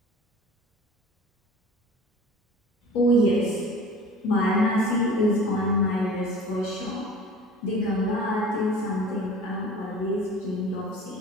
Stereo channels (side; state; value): both; normal; correlation 0.42